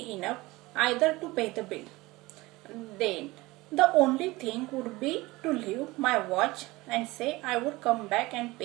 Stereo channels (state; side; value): quieter; left; 20.8 dB